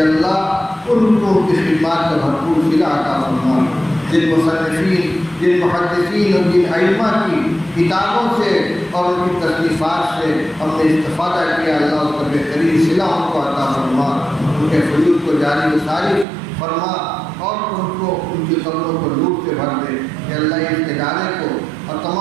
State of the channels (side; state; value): left; drops out; at 16.2 s